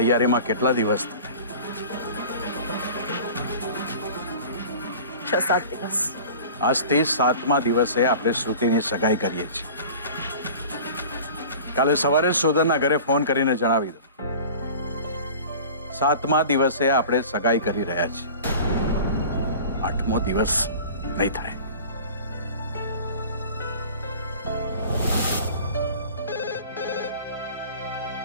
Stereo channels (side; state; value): both; inverted; correlation -0.41